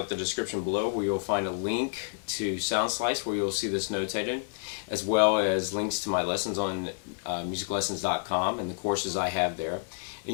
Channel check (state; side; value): silent; right; digital silence